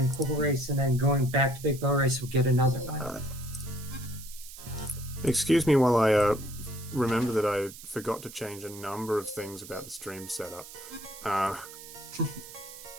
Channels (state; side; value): noise; right; hiss, 15 dB below the sound